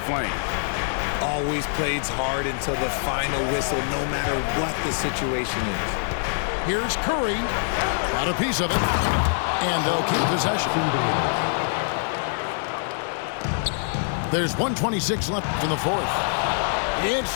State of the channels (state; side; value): silent; right; digital silence